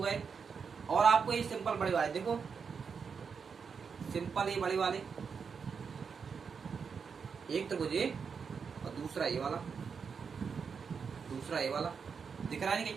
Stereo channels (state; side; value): quieter; left; 6.0 dB